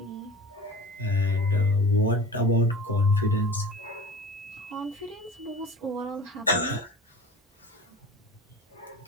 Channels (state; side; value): normal; both; correlation 0.38